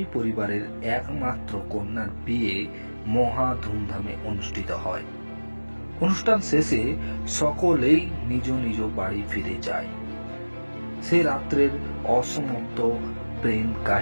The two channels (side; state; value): both; inverted; correlation -1.00